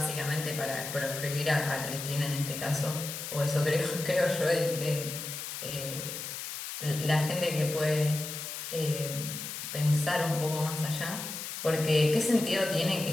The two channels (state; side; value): noise; left; hiss, 7 dB below the sound